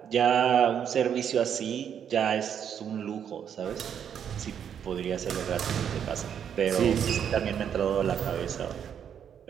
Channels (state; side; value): quieter; left; 8.5 dB